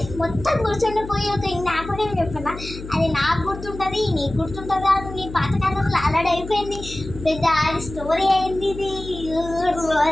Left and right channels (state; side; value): noise; left; hum, 12 dB below the sound